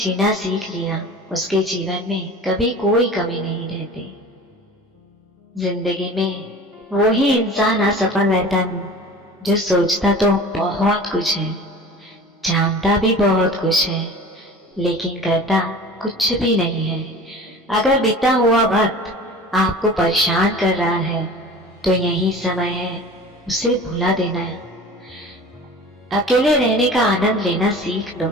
सीख लिया उसके जीवन में कभी कोई कमी नहीं रहती। जिंदगी में वही इंसान असफल रहता है जो सोचता तो बहुत कुछ है, जानता भी बहुत कुछ है, लेकिन करता कुछ भी नहीं है। अगर बीता हुआ वक्त आपको परेशान कर रहा है तो यही समय है उसे भुला देना है। अकेले रहने का आनंद लेना सीख लो,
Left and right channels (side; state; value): both; normal; correlation 0.39